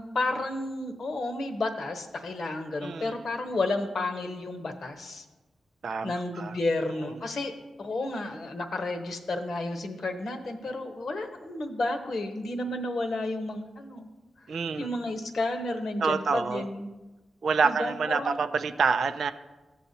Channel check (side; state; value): both; normal; correlation 0.84